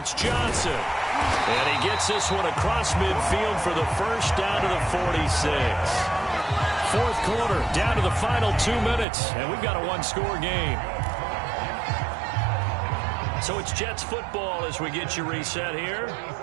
Johnson. And he gets this one across midfield for the first down to the 46. 4th quarter, down to the final 2 minutes, and we've got a 1-score game. So it's Jets football as we get you reset here.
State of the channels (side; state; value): left; drops out; at 9.1 s